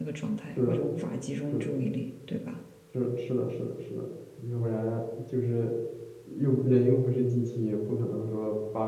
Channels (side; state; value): both; identical; correlation 1.00